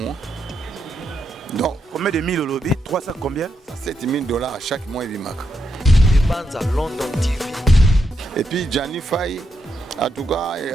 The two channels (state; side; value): normal; both; correlation 0.82